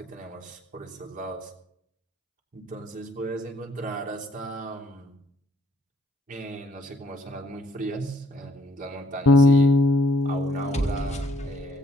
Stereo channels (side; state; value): both; normal; correlation 0.64